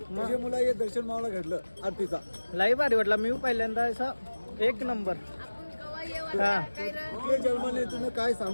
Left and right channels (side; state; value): both; inverted; correlation -1.00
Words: मुला हे दर्शन मावला घडलं आरतीचा. लई भारी वाटला. मी पहिल्यांदा असा एक नंबर. हा कुठले जन्माने तुम्ही काय